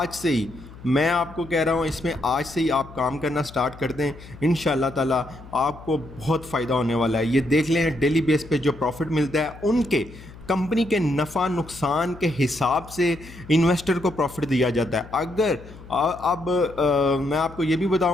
سے ہی میں آپ کو کہہ رہا ہوں، اس میں آج سے ہی آپ کام کرنا سٹارٹ کر دیں، انشاءاللہ تعالیٰ آپ کو بہت فائدہ ہونے والا ہے۔ یہ دیکھ لیں ڈیلی بیس پہ جو پروفٹ ملتا ہے ان کے کمپنی کے نفع نقصان کے حساب سے انویسٹر کو پروفٹ دیا جاتا ہے۔ اگر اب میں آپ کو یہ بھی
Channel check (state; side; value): noise; left; hum, 18 dB below the sound